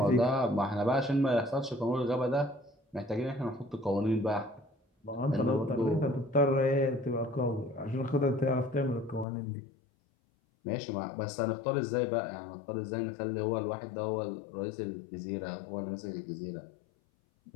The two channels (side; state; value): right; drops out; at 9.2 s